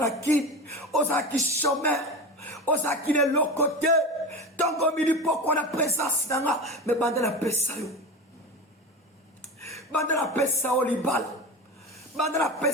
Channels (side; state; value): both; normal; correlation 0.26